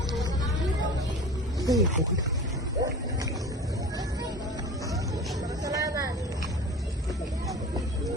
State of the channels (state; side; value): normal; both; correlation 0.37